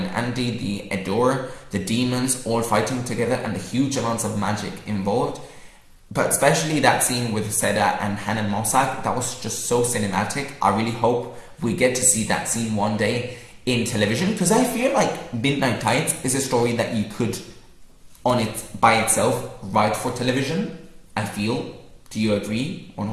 Andy, the Adore, the demons all fighting together, and the huge amounts of magic involved. But especially that scene with Seda and Hanan Mossack, that was just so cinematic. I really hope we get to see that scene one day in television, because I feel like Midnight Tides is a story that you could, by itself, write for television. I feel. Do you agree or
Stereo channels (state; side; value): identical; both; correlation 1.00